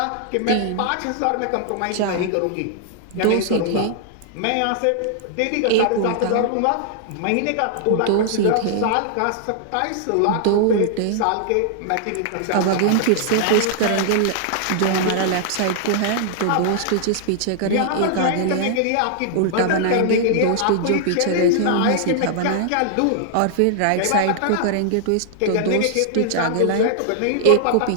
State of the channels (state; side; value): different; both; correlation -0.01